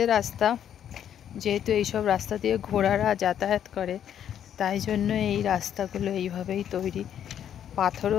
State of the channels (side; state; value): right; quieter; 9.6 dB